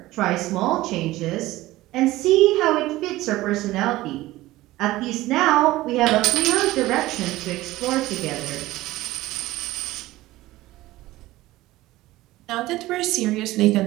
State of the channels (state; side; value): quieter; left; 17.4 dB